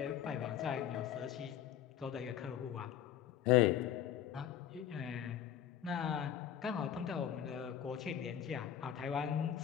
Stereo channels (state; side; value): quieter; right; 10.1 dB